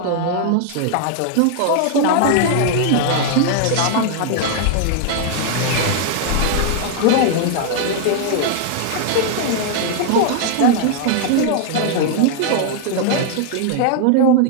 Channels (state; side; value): different; both; correlation 0.00